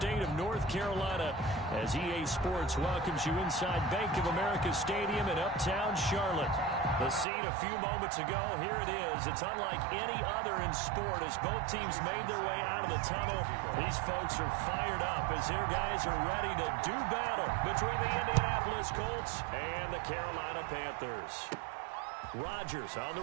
of North Carolina as EA Sports welcomes you inside Bank of America Stadium in uptown Charlotte. The scene a few moments ago, here it is. It's unlike any other in sport as both teams made their way out of the tunnel. These folks are fired up as their guys are ready to do battle between the Indianapolis Colts and the Carolina Panthers. Rodgers on the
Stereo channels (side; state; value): left; drops out; at 7.2 s